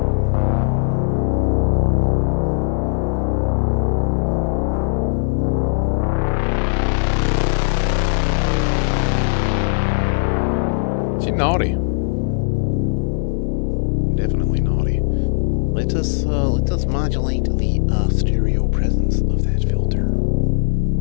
Is he naughty? Definitely naughty. Let us modulate the stereo presence of that filter.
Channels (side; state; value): right; silent; digital silence